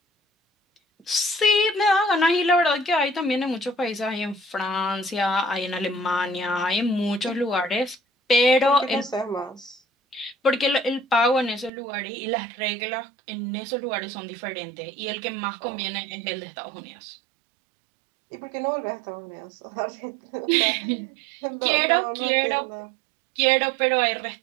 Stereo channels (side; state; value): left; drops out; at 11.7 s